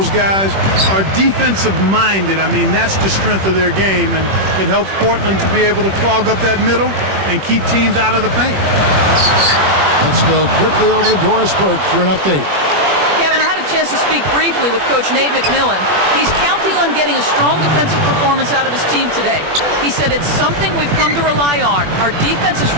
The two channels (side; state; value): left; late; 21 ms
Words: guys are defensive-minded. I mean, that's the strength of their game, and it helps Portland to be able to clog up that middle and keep teams out of the paint. Let's go quickly over to Doris Burke for an update. Kevin, I had a chance to speak briefly with Coach Nate McMillan. He's counting on getting a strong defensive performance out of his team today. He said it's something we've come to rely on. Our defense is